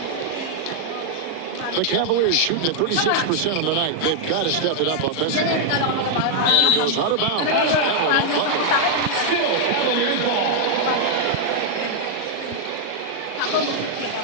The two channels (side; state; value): right; late; 38 ms